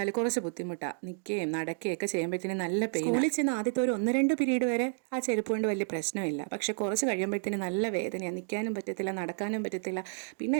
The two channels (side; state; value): left; silent; digital silence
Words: കുറച്ച് ബുദ്ധിമുട്ടാണ്. നിൽക്കുകയും നടക്കുകയൊക്കെ ചെയ്യുമ്പോഴത്തേനും നല്ല പെയിൻ. സ്കൂളിൽ ചെന്ന് ആദ്യത്തെ ഒരു 1-2 പീരീഡ് വരെ ആ ചെരുപ്പ് കൊണ്ട് വലിയ പ്രശ്നമില്ല. പക്ഷെ കുറച്ച് കഴിയുമ്പോഴത്തേനും നല്ല വേദനയാണ്. നിൽക്കാനും പറ്റത്തില്ല, നടക്കാനും പറ്റത്തില്ല. പിന്നെ